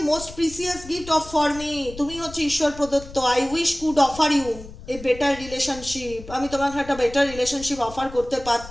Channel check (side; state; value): left; noise; rumble, 15 dB below the sound